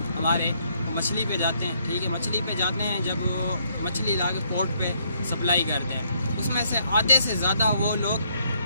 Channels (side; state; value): both; inverted; correlation -0.71